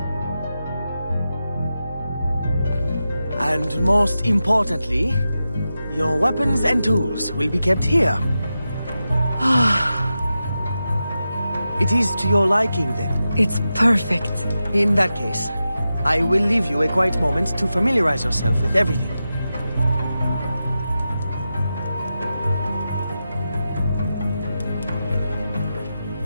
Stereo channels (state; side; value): inverted; both; correlation -0.91